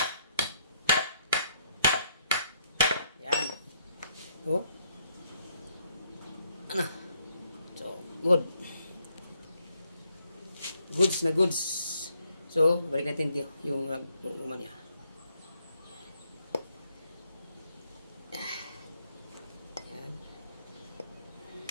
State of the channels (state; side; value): inverted; both; correlation -0.72